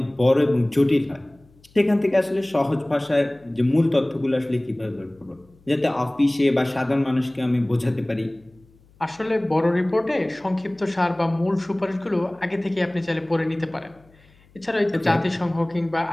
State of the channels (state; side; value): noise; left; hum, 30 dB below the sound